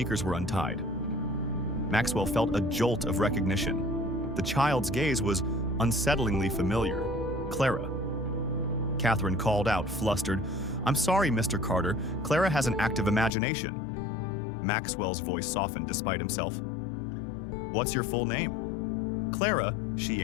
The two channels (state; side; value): drops out; right; at 13.3 s